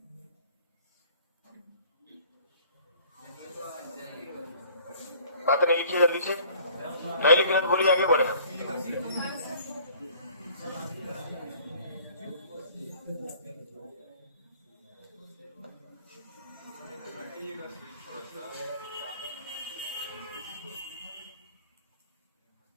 बात नहीं लिखिए जल्दी से, नहीं लिखना तो बोलिए, आगे बढ़े।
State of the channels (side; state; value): both; inverted; correlation -0.52